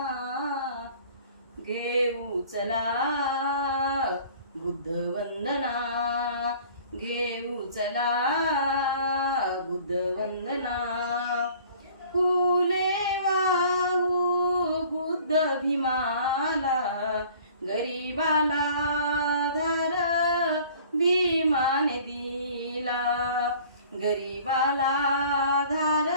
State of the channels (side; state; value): both; inverted; correlation -0.50